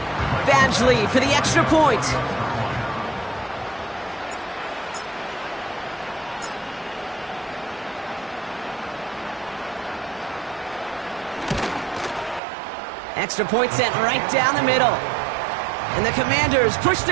Bad Badgley for the extra point. Extra point sent right down the middle. And the Commanders push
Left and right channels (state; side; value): drops out; left; at 12.4 s